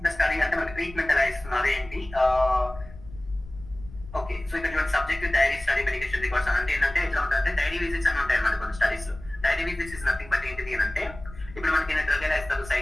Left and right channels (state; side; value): noise; left; rumble, 16 dB below the sound